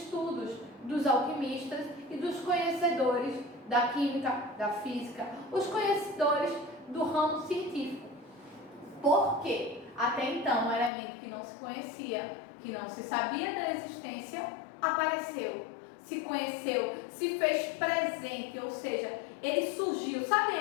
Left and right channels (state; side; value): drops out; right; at 10.9 s